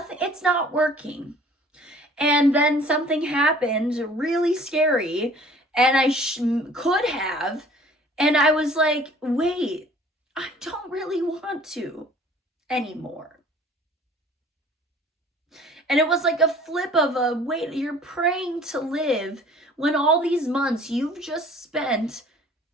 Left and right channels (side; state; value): both; normal; correlation 0.51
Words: it's not working. And then something happened really scary, and I could have, and I was like, wait, I don't really want to anymore. And it was like a flip of a, wait, you're praying to live when all these months you've just spent